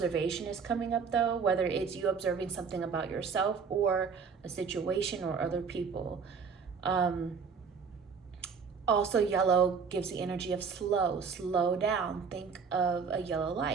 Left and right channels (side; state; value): left; quieter; 5.7 dB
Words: is coming up though, whether it's you observing something about yourself or a situation or other people. Also, yellow gives the energy of slow down. Think of a yellow